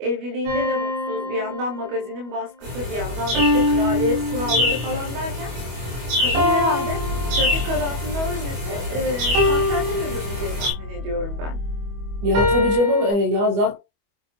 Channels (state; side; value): late; left; 25 ms